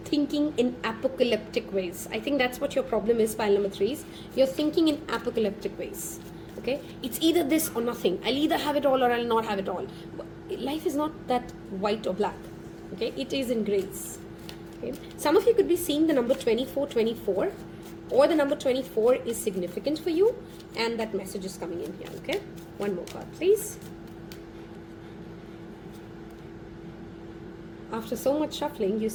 thinking in apocalyptic ways. I think that's what your problem is, pile number 3s. You're thinking in apocalyptic ways. Okay, it's either this or nothing. I'll either have it all or I'll not have it all. Life is not that white or black. Okay, it is in grays. Okay, some of you could be seeing the number 2424, or the number 24 is significant for you, and that message is coming in here. Okay, 1 more card, please. After so much shuffling, you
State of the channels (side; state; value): both; identical; correlation 1.00